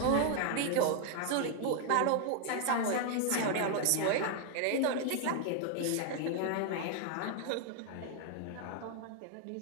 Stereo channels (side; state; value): both; different; correlation 0.00